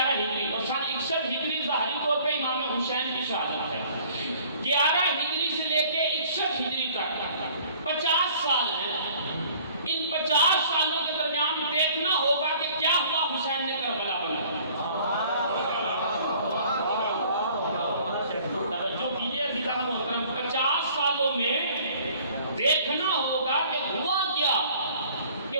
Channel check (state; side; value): inverted; both; correlation -0.54